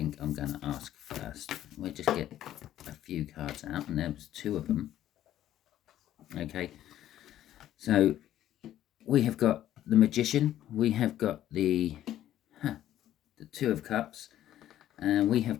I'm going to ask first. We'll just get a few cards out, and there's 2 of them. Okay, so we have got the Magician, we have got the 2 of Cups, and we have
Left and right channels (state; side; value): quieter; right; 12.4 dB